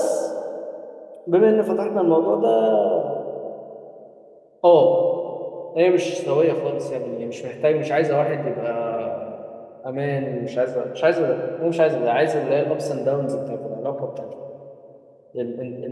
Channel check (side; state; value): both; identical; correlation 1.00